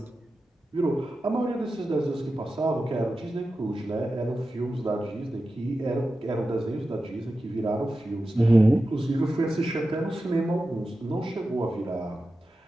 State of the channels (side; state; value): both; normal; correlation 0.92